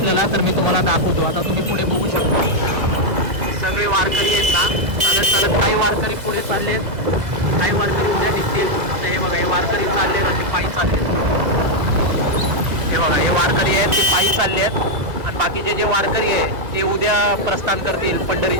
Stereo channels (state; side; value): late; left; 2.0 ms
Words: तर मी तुम्हाला दाखवतो. आता तुम्ही पुढे बघू शकता सगळे वारकरी आहेत ना, चालत चालत. काही वारकरी पुढे चाललेत, काही वारकरी उद्या निघतील. हे बघा, हे वारकरी चाललेत आणि पायी चाललेत. हे बघा, हे वारकरी आहेत, ते पायी चालले आहेत. आणि बाकीचे जे वारकरी आहे ते उद्या प्रस्थान करतील